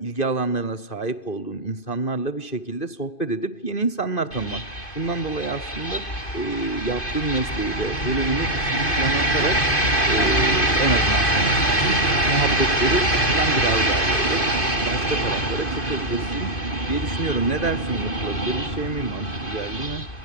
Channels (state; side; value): late; right; 2.5 ms